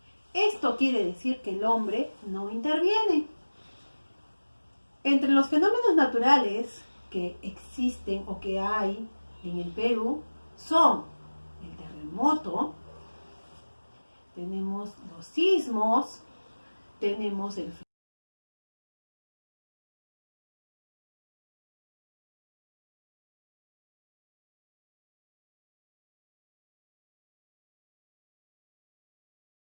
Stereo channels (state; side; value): inverted; both; correlation -1.00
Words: Esto quiere decir que el hombre no interviene. Entre los fenómenos naturales que existen o que hay en el Perú son el terremoto, tenemos los sismos, tenemos el